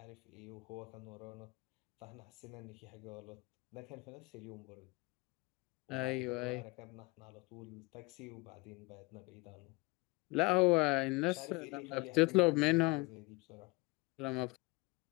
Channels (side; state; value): right; quieter; 23.9 dB